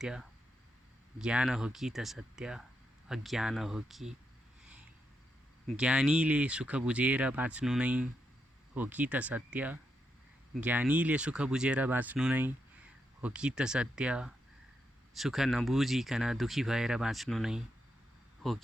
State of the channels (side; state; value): both; normal; correlation 0.83